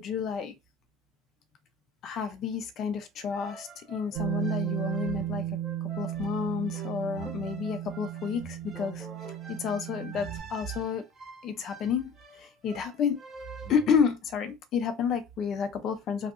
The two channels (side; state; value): right; quieter; 3.5 dB